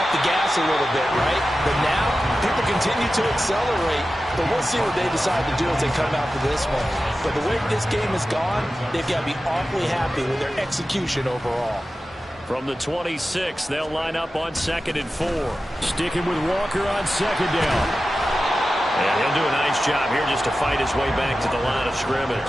the gas a little bit, right? But now, people continue to accelerate. But we'll see what they decide to do as they come out for this one. But the way this game has gone, they've got to be awfully happy with their execution overall. From the 26, they'll line up on 2nd and 4. Sticking with Walker on 2nd down. And he'll do a nice job here just to fight his way back to the line of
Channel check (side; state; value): both; normal; correlation 0.94